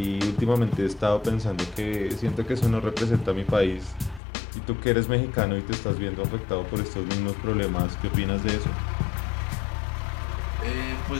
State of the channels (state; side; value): drops out; right; at 4.2 s